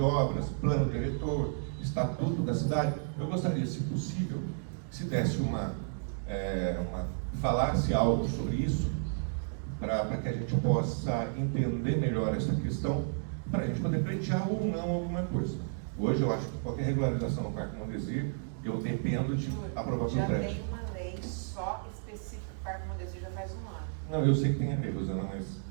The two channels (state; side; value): silent; left; digital silence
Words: Plano Diretor, Estatuto da Cidade. Eu gostaria, se possível, se desse falasse algo sobre isso, para que a gente possa entender melhor essa questão, para a gente poder pleitear ou não alguma coisa. Hoje eu acho que qualquer regularização no Parque Mondesir, eu dependo de aprovação já prévia. tem uma lei só específica do Parque Mondesir já faz 1 ano. Não, eu sei que tem a lei, Rosana, mas